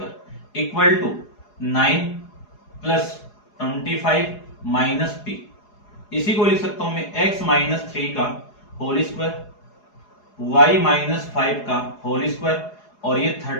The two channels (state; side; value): late; right; 4.8 ms